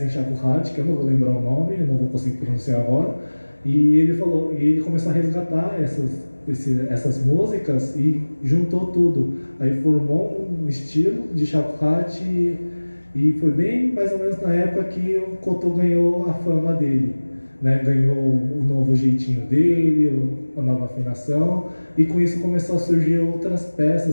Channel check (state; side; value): inverted; both; correlation -1.00